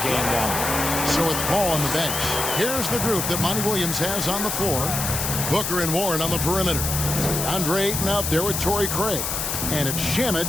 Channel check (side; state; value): left; noise; hiss, 2 dB below the sound